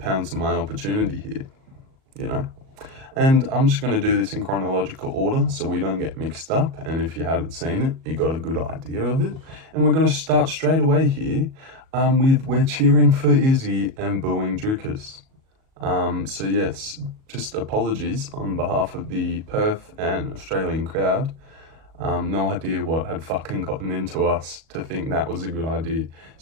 on my opportunity here, you know? And I'm just going to do this in chronological order so we don't get mixed up. And if you hadn't seen it, you got a good idea of it. And we're going to start straight away here with we're cheering for Izzy and booing Dricus. So yes, just apologies on behalf of the Perth and Australian crowd. No idea what had fucking gotten into us to think that was a good idea,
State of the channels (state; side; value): late; left; 37 ms